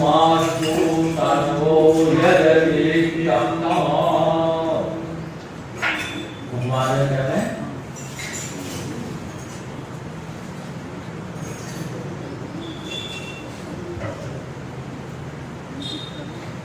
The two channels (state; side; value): identical; both; correlation 1.00